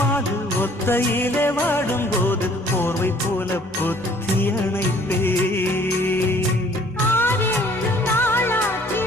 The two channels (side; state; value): both; normal; correlation 0.57